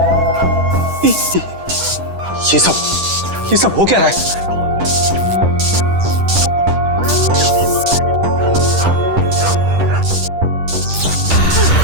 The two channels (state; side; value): late; left; 10 ms